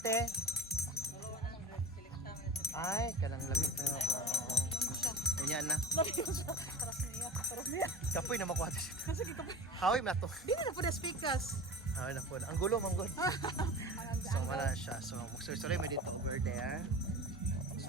te. Ay, kanang lamig na. Ano siya? Ganyan na. Lagi ko siya. Taras niya. Kapoy na makuha siya. Kasi kikapoy. Hawim na to. Di na po na speakers. Ah, na po. Ang gulo, manggod. So, wala siya. So, magsuloy mo dito over there.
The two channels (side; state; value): both; normal; correlation 0.35